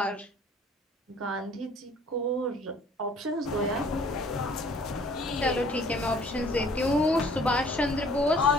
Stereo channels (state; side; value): normal; both; correlation 0.55